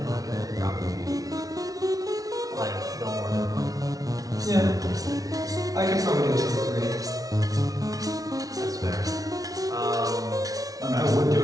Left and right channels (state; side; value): late; left; 0.18 ms